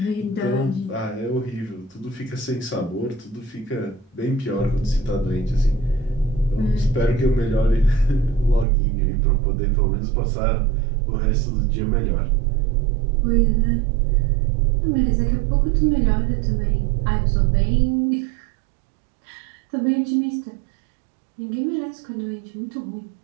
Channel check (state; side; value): drops out; left; at 8.7 s